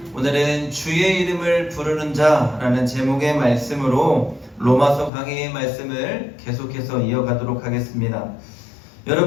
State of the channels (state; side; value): drops out; right; at 5.1 s